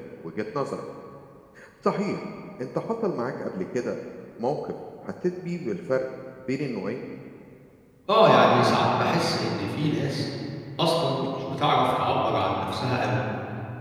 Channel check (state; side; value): identical; both; correlation 1.00